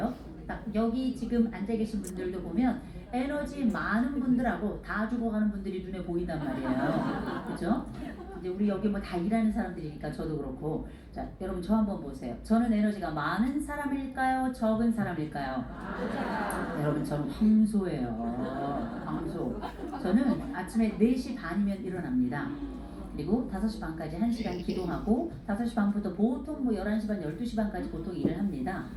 딱 여기 지금 앉아 계신 분들도 보면 에너지 많은 분들하고 다 죽어가는 분들이 눈에 보인단 말이에요. 그죠? 이제 우리 여기 뭐 다 일하는 사람들이니까 저도 그렇고. 자, 여러분 저 한번 보세요. 저는 에너지가 많은 사람일까요? 적은 사람일까요? 여러분 저는 황소예요. 황소. 저는 아침에 4시 반이면 일어납니다. 그리고 5시 반까지 1시간 기도하고 5시 반부터 보통 뭐 11시 반, 12시 반까지 보통 일을 합니다.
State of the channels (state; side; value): identical; both; correlation 1.00